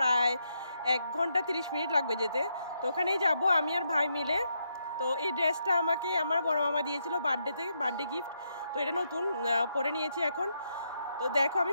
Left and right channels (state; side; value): inverted; both; correlation -0.80